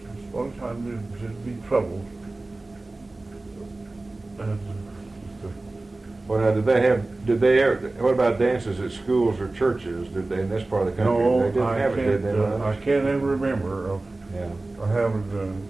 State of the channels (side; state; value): left; quieter; 3.1 dB